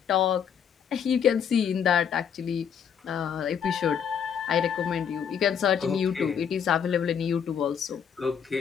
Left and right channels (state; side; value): quieter; right; 7.8 dB